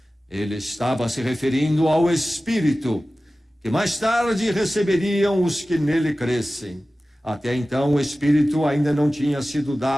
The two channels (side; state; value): both; normal; correlation 0.96